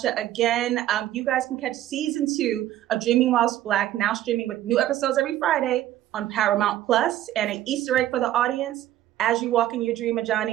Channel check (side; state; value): left; quieter; 13.3 dB